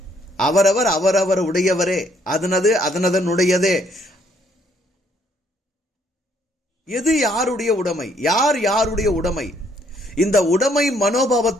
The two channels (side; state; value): both; normal; correlation 0.67